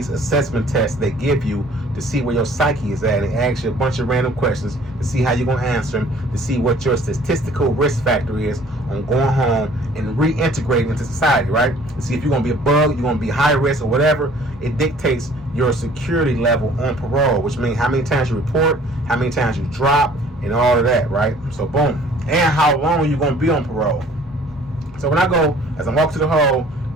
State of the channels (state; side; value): normal; both; correlation 0.54